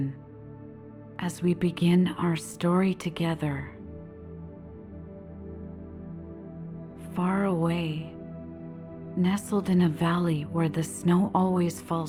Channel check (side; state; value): both; identical; correlation 1.00